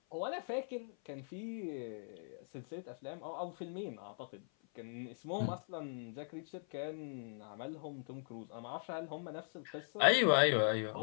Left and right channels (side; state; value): right; silent; 51 dB below the other